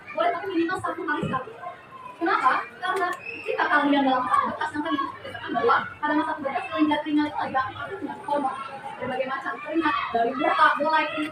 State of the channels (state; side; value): identical; both; correlation 1.00